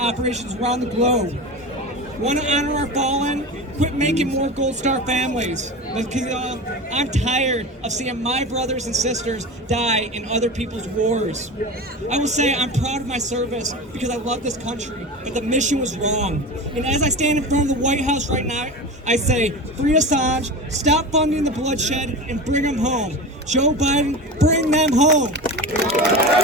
operations around the globe. Want to honor our fallen? Quit making more Gold Star families. Because I'm tired of seeing my brothers and sisters die in other people's wars. I will say I'm proud of my service because I love this country, but the mission was wrong. And as I stand in front of the White House right now, I say, free Assange, stop funding the bloodshed, and bring them home. Joe Biden, bring them home.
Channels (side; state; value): both; normal; correlation 0.28